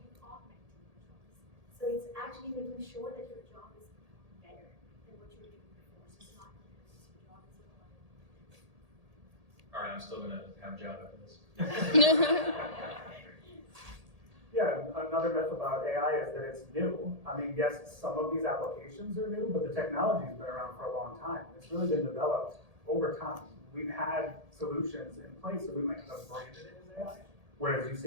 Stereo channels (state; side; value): late; left; 1.8 ms